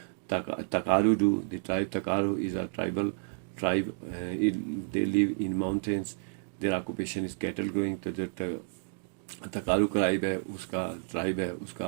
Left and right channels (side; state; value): left; silent; digital silence